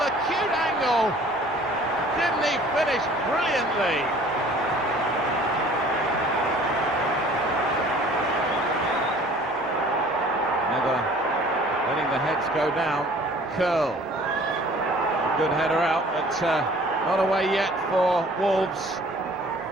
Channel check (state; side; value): normal; both; correlation 0.51